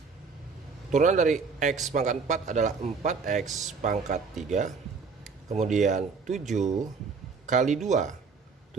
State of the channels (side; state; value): left; quieter; 5.0 dB